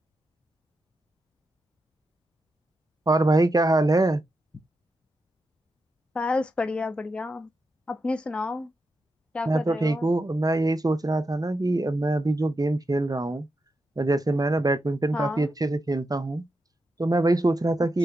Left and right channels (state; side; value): normal; both; correlation 0.86